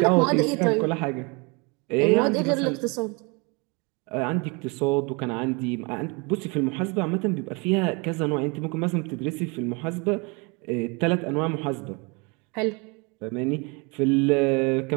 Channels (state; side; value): quieter; left; 30.0 dB